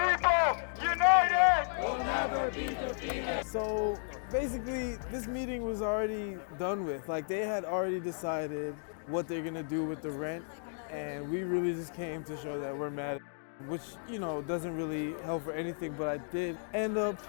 united Will never be defeated. So basically, this meeting was already done with. Like, they had already decided what they're gonna do with the rent, and we really just came to show that we're mad, which, you know, doesn't really help for anything. But I did end up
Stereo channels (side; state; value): right; silent; digital silence